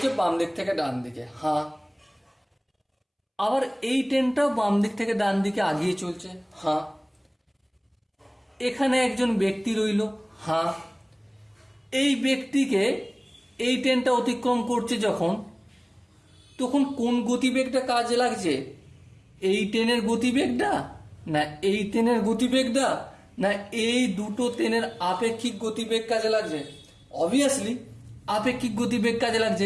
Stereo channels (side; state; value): both; identical; correlation 1.00